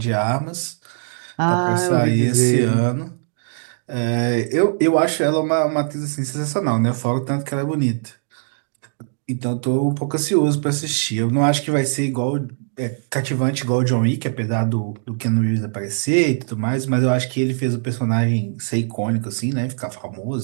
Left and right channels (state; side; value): silent; left; digital silence